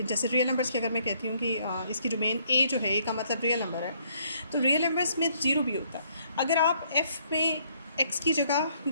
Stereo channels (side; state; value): both; inverted; correlation -0.67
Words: जैसे रियल नंबर्स की अगर मैं कहती हूँ कि इसकी डोमेन ए जो है, ए का मतलब रियल नंबर है, तो रियल नंबर्स में ज़ीरो भी होता है। अगर आप एफ़ में एक्स की जगह,